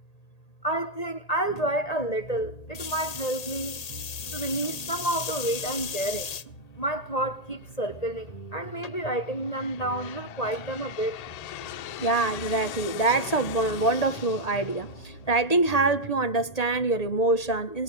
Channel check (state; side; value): late; right; 1.8 ms